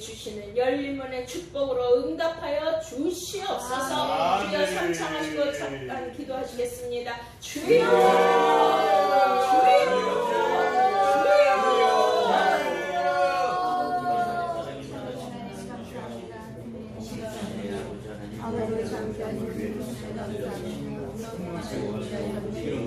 열린 문의 축복으로 응답하여 주시옵소서. 주여 삼창하시고 잠깐 기도하시겠습니다. 주여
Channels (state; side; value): identical; both; correlation 1.00